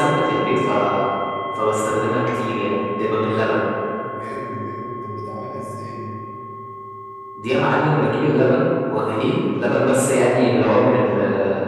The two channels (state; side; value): identical; both; correlation 1.00